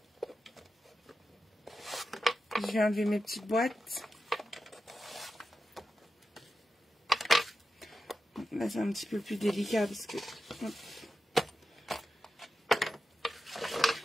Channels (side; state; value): both; normal; correlation 0.91